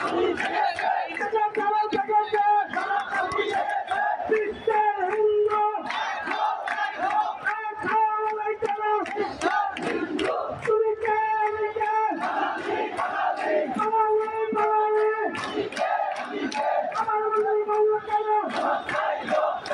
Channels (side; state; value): both; identical; correlation 1.00